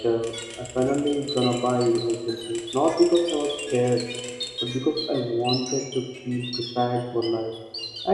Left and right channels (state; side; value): identical; both; correlation 1.00